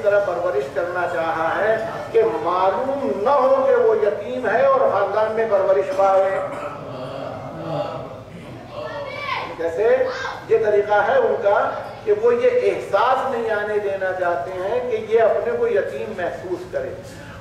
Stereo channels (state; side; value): identical; both; correlation 1.00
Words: طرح پرورش کرنا چاہا ہے کہ معلوم نہ ہو کہ وہ یتیم ہے اور خاندان میں پرورش پائے. جیسے یہ طریقہ ہے ان کا کہ وہ یہ احساس نہیں آنے دینا چاہتے ہیں کہ یہ اپنے کو یتیم محسوس کرے.